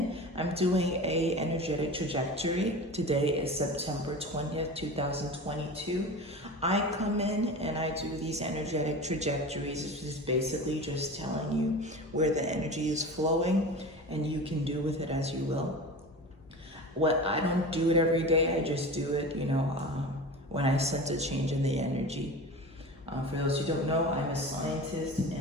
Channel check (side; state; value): both; normal; correlation 0.32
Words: I'm doing a energetic trajectory. Today is September 20th, 2022. I come in and I do these energetic trajectories, which is basically just telling you where the energy is flowing and you can do with it as you will. I don't do it every day, I just do it, when I sense a change in the energy. For those who don't know, I'm a scientist